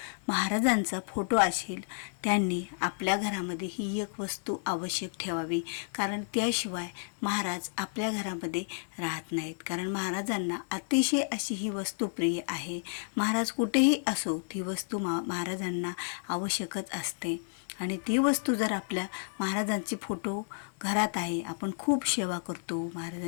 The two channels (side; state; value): right; silent; digital silence